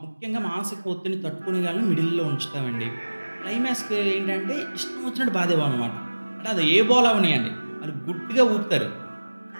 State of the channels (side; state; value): both; inverted; correlation -1.00